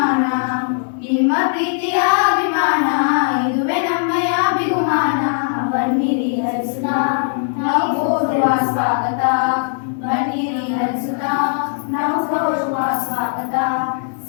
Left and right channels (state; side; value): silent; right; digital silence